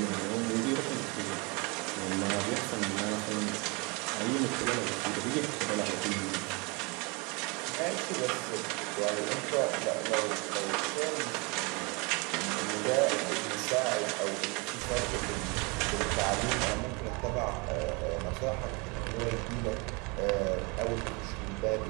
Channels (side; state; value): left; quieter; 29.1 dB